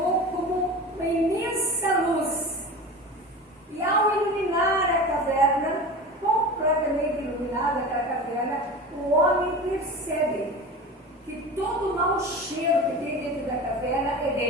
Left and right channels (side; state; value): both; normal; correlation 0.31